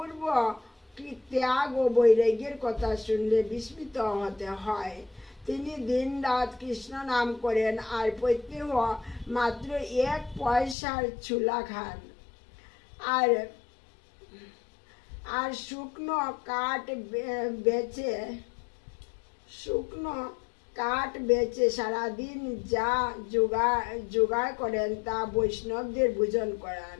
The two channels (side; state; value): right; drops out; at 10.8 s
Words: ত্যাগ ও বৈরাগ্যের কথা শুনলে বিস্মিত হতে হয়। তিনি দিন রাত কৃষ্ণ নাম করেন আর প্রত্যেক মাত্র 1 পয়সার ছুলা খান আর শুকনো কাঠ বেচে সারাদিন যা জোগাড় করেন তা বৈষ্ণবদের ভোজন করান।